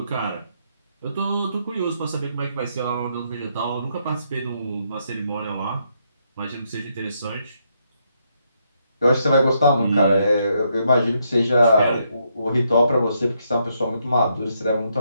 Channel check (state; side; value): inverted; both; correlation -0.77